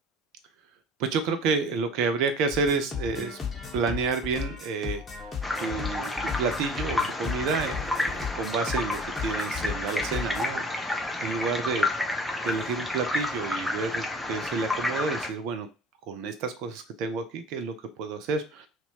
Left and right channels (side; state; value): both; normal; correlation 0.44